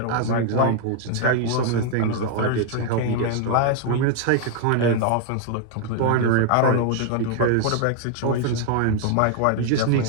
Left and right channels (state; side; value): different; both; correlation 0.00